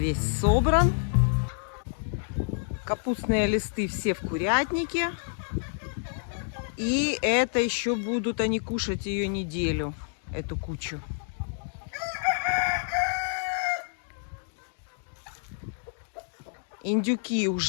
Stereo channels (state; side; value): silent; right; digital silence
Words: собран. Капустные листы все в курятнике. И это еще будут они кушать ее неделю, эту кучу. Индюки